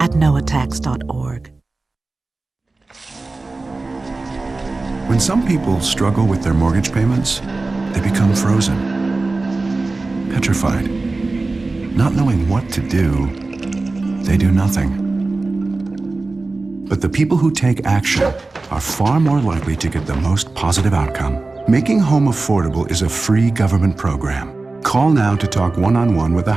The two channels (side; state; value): left; quieter; 3.4 dB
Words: at noattacks.org. When some people struggle with their mortgage payments, they become frozen, petrified. Not knowing what to do, they do nothing. But the people who take action are far more likely to get the most positive outcome. Making home affordable is a free government program. Call now to talk one-on-one with a